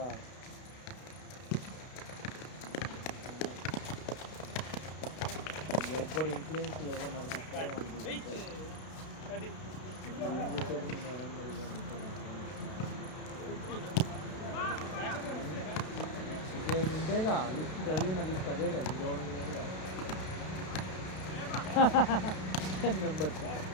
ఒక్కడు ఇన్ఫ్లుయెన్స్ ఎవరు నడిపిస్తారో వాళ్ళు చూస్తారు. ఏం చేసేది మేడం మరి ఇక ఇంతేగా లిస్ట్ చదివిన లిస్ట్ అదే కదా ఇంకెవడం లేదుగా 10 మెంబర్స్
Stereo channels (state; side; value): late; right; 32 ms